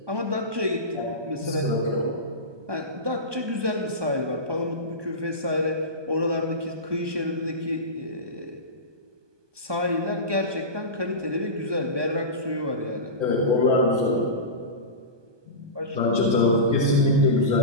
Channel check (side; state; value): left; late; 1.2 ms